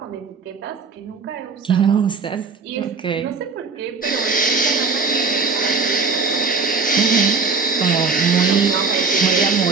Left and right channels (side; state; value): left; quieter; 4.5 dB